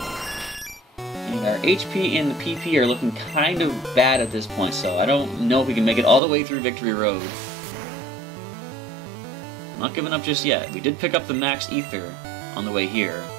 And our HP and the PP are looking kind of bad at this point, so I don't know if we can make it all the way through Victory Road. I'm not giving up just yet. We did pick up the Max Ether on the way here.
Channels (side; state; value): left; drops out; at 6.2 s